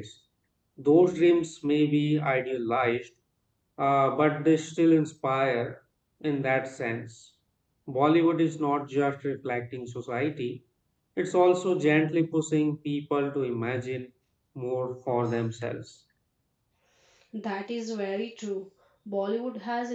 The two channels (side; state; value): both; identical; correlation 1.00